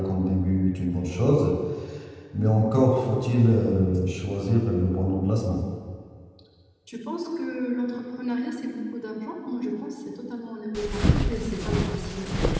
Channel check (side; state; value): both; identical; correlation 1.00